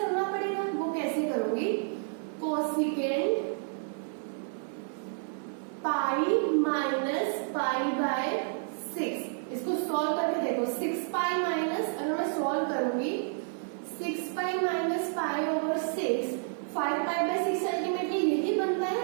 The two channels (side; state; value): left; silent; digital silence